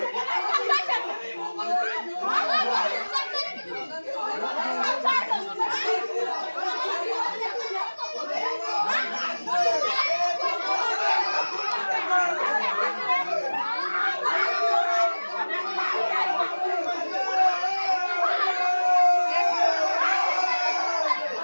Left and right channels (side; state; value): both; inverted; correlation -1.00